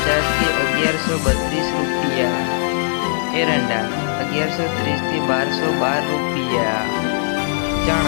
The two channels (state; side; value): silent; right; digital silence